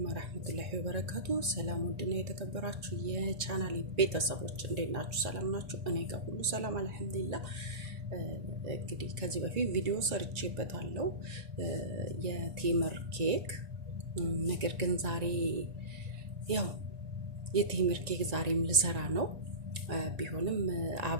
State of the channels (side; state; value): left; late; 1.9 ms